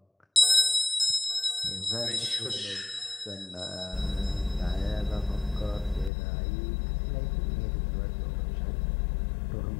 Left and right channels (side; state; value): right; drops out; at 6.1 s